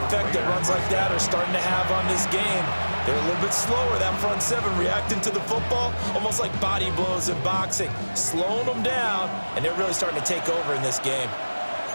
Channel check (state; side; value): inverted; both; correlation -1.00